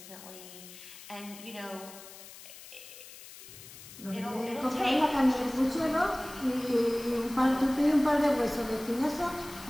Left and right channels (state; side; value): noise; left; hiss, 16 dB below the sound